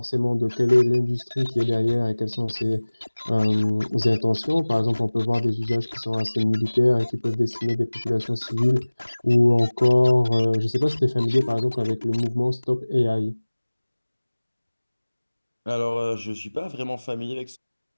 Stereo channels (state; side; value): inverted; both; correlation -1.00